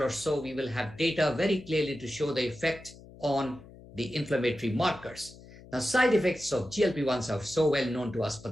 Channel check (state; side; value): noise; left; hum, 20 dB below the sound